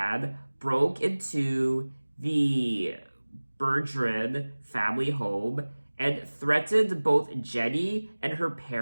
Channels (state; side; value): inverted; both; correlation -1.00